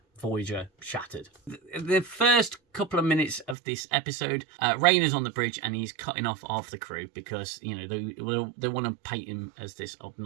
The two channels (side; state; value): left; drops out; at 3.6 s